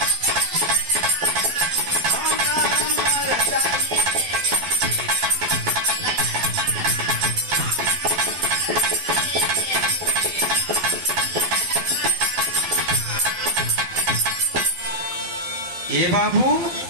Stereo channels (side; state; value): left; late; 12 ms